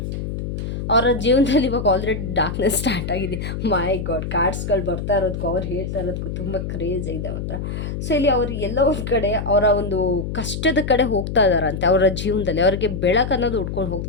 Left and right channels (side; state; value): left; noise; hum, 5 dB below the sound